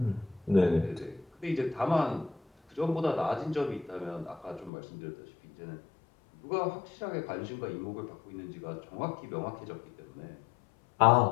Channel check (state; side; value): drops out; right; at 4.7 s